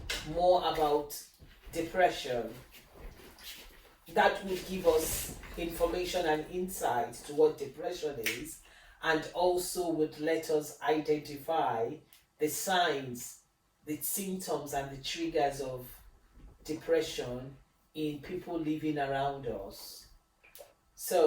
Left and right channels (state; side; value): identical; both; correlation 1.00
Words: more about depression. That will give us information and insight to what depression is, and also would let us identify the signs, the symptoms, and the triggers of depression in people living around us.